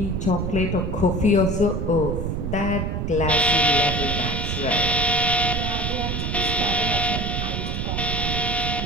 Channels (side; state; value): right; noise; rumble, 2 dB below the sound